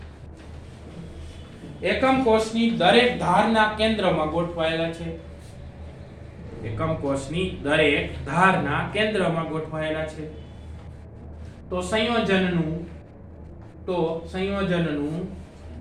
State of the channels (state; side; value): identical; both; correlation 1.00